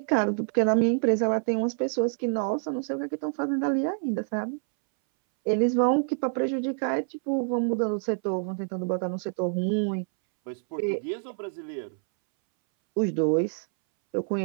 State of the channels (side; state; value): left; silent; 60 dB below the other